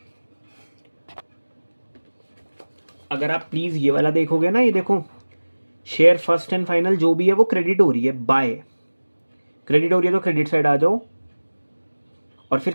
अगर आप प्लीज़ ये वाला देखोगे ना, ये देखो शेयर फर्स्ट एंड फाइनल जो भी है वो क्रेडिट हो रही है, बाय क्रेडिट हो रही है, तो क्रेडिट साइड आ जाओ और फिर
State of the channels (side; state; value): both; inverted; correlation -1.00